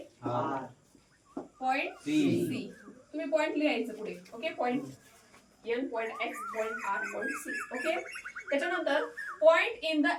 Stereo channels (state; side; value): identical; both; correlation 1.00